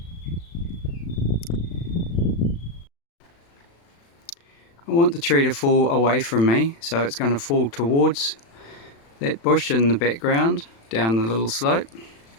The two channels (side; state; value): right; late; 36 ms